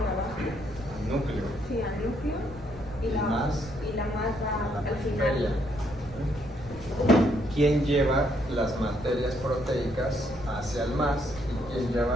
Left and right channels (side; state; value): right; noise; rumble, 17 dB below the sound